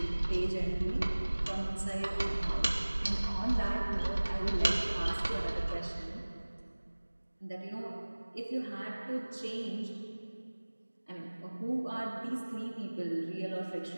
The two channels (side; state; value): both; inverted; correlation -1.00